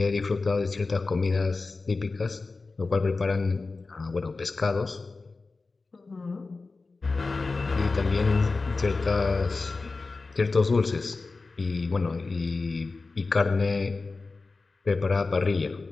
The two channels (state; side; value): quieter; right; 3.8 dB